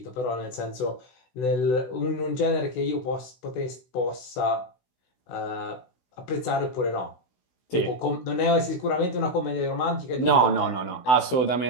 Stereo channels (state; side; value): late; right; 16 ms